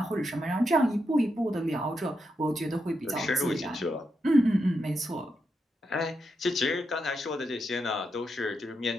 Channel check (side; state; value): both; normal; correlation 0.84